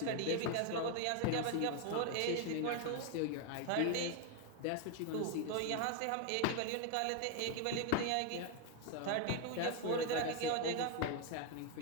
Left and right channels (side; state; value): both; different; correlation 0.01